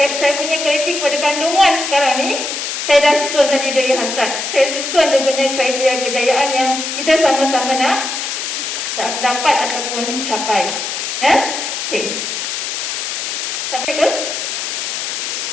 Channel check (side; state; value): left; noise; hiss, 3 dB below the sound